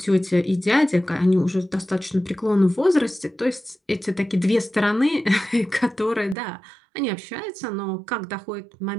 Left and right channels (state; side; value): drops out; left; at 6.4 s